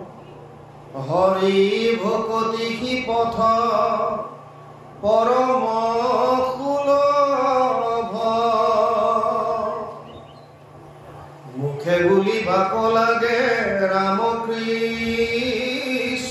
হৰি ভকতি সি পথ পৰম সুলভ মুখে বুলি বাক লাগে ৰাম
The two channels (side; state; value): both; identical; correlation 1.00